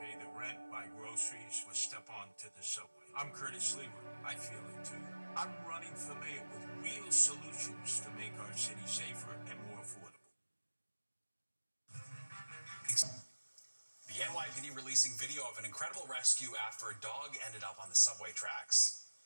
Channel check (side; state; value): both; inverted; correlation -1.00